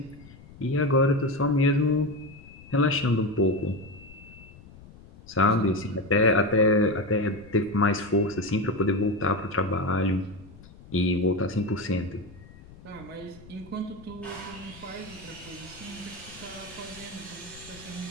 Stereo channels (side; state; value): left; noise; rumble, 20 dB below the sound